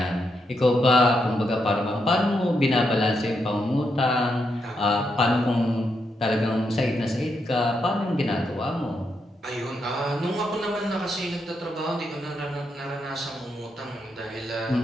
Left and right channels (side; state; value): both; normal; correlation 0.81